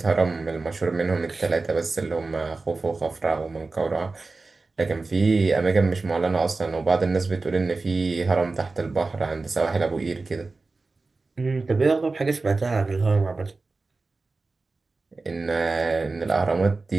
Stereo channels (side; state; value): left; quieter; 3.7 dB